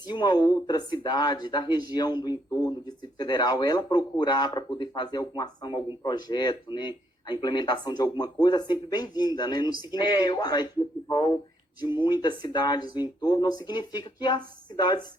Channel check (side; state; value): both; normal; correlation 0.73